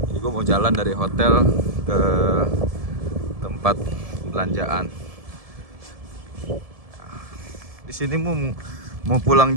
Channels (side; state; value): left; late; 1.7 ms